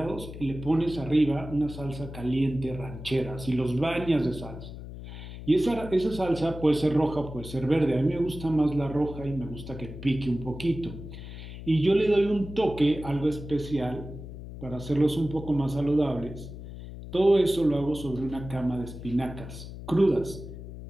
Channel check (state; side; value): noise; left; hum, 11 dB below the sound